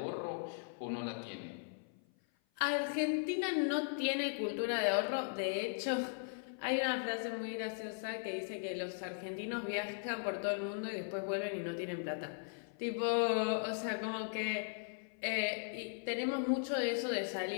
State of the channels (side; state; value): right; silent; 52 dB below the other